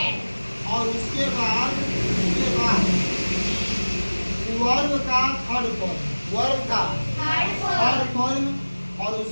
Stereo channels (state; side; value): inverted; both; correlation -1.00